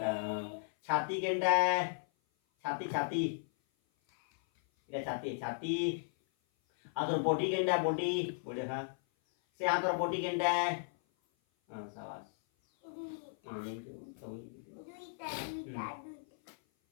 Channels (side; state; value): right; silent; 54 dB below the other